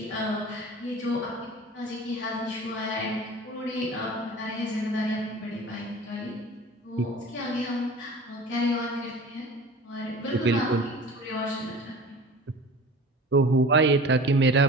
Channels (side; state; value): both; normal; correlation 0.40